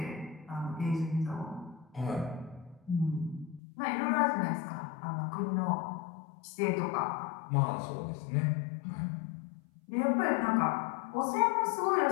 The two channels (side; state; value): right; drops out; at 3.6 s